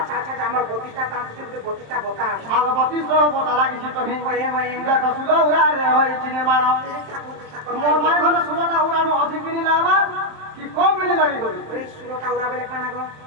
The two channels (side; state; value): left; late; 27 ms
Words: আচ্ছা আমার প্রতিটা দাম তুমি প্রতিটা বতা আমার প্রতিটা বতা লাগিছে তো হয়ে দেখো সুদা উড়া রে হইছে নির্মাণ মোর মাই ঘরে সুদা উড়ানো অধিক দিন লাগবা কি কম দিন লাগি করি এই সুদা উড়া বেলে কানা গো